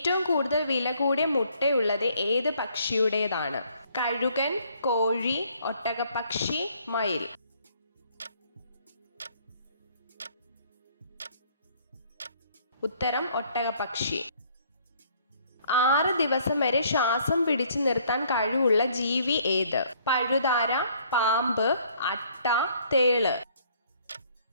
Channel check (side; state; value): both; inverted; correlation -0.62